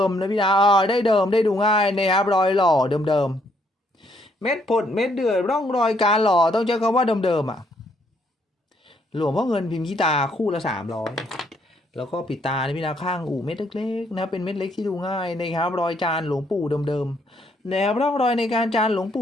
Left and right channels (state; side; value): normal; both; correlation 0.70